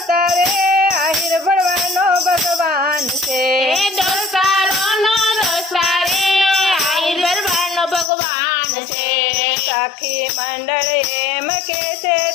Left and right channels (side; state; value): right; drops out; at 8.1 s